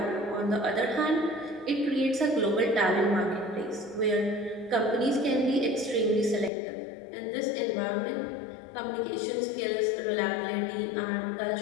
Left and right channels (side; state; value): right; drops out; at 6.5 s